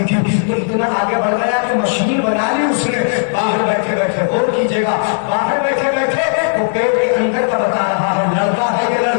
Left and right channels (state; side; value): silent; right; digital silence